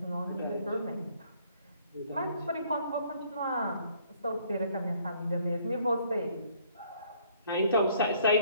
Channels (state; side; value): inverted; both; correlation -0.62